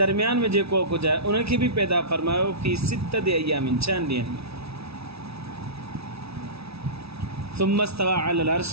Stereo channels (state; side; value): late; left; 0.78 ms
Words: दरमियान में जेको कुझु आहे उनखे बि पैदा फ़रमायो फ़ी 6 अय्यामिन 6 ॾींहंनि में सुम्मा इस्तवा अलल अर्श